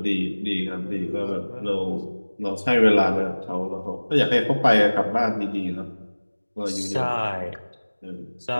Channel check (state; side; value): inverted; both; correlation -1.00